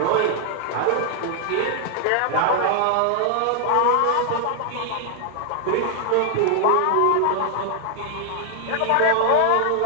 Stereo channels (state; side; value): different; both; correlation 0.00